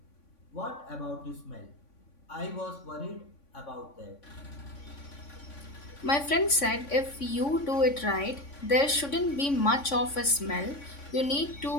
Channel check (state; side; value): late; right; 3.5 ms